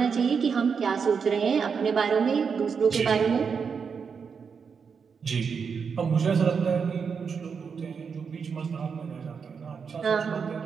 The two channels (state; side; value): quieter; left; 6.0 dB